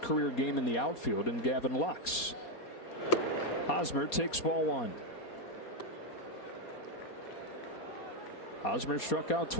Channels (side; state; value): right; late; 4.2 ms